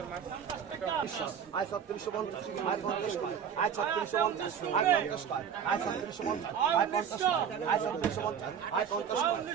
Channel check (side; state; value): left; quieter; 7.9 dB